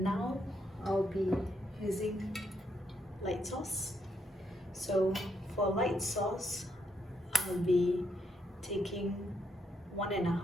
now I'll be using light sauce. So for light sauce, I'll be taking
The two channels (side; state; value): both; normal; correlation 0.76